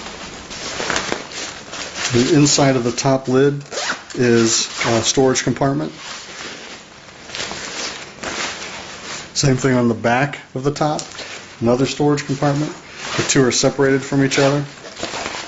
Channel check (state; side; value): identical; both; correlation 1.00